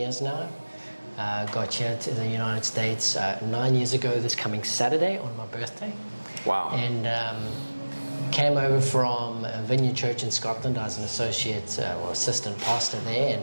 now. Got here to the United States 9 years ago this coming Saturday on my birthday. Wow. And came over from Vineyard Church in Scotland. I was an associate or assistant pastor there,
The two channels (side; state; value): both; inverted; correlation -1.00